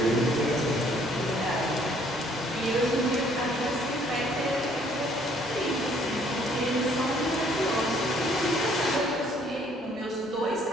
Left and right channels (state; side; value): normal; both; correlation 0.62